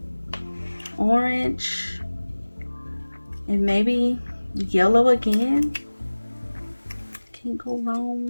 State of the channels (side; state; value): both; inverted; correlation -1.00